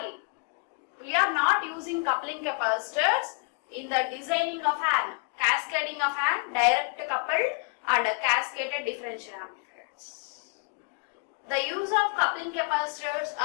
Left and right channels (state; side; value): quieter; right; 37.1 dB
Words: we are not using coupling capacitors in the designing of an cascading of an direct coupled and a cascaded differential amplifiers. The use of coupling capacitors